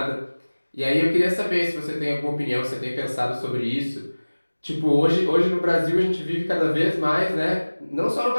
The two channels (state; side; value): inverted; both; correlation -1.00